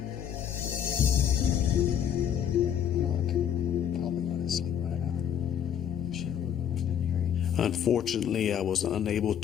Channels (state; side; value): quieter; right; 9.1 dB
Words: Unfortunately, I was unable